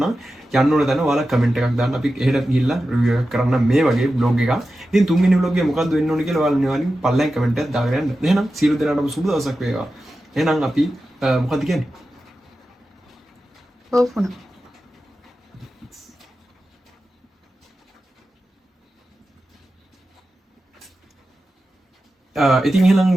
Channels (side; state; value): both; normal; correlation 0.92